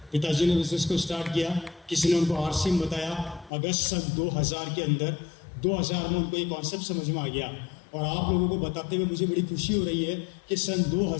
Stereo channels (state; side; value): drops out; right; at 3.5 s